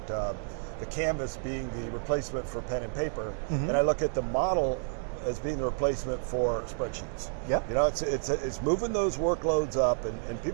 the canvas being the replacement for pen and paper, and I look at the model as being the replacement for spreadsheets. Yep. It's moving those workloads up, and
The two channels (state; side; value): silent; left; 58 dB below the other